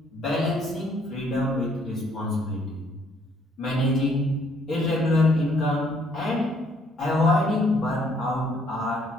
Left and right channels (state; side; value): normal; both; correlation 0.66